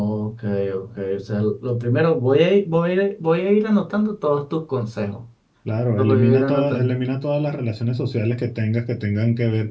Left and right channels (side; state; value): both; identical; correlation 1.00